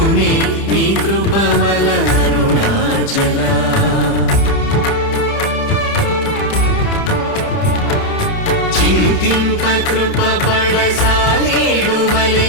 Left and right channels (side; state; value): right; late; 30 ms